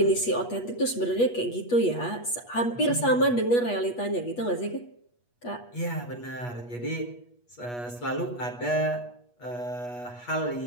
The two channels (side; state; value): right; late; 8.3 ms